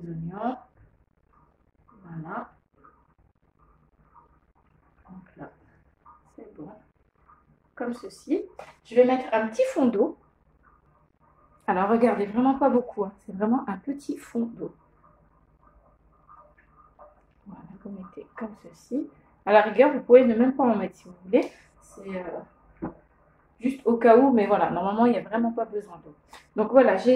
oignons. Voilà. Donc là, c'est bon. Comme ceci. Je vais mettre un petit fond d'eau. Alors regardez, vraiment pas beaucoup, hein. C'est vraiment un petit fond d'eau. Voilà, vous mettez comme ceci. À la rigueur, vous pouvez ne même pas en mettre si vous voulez. C'est juste au cas où, mais voilà, normalement, il n'y a vraiment pas besoin d'eau. Donc voilà,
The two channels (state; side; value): identical; both; correlation 1.00